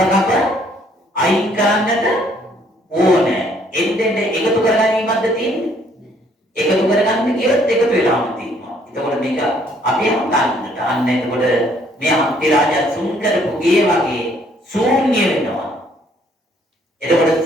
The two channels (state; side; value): normal; both; correlation 0.64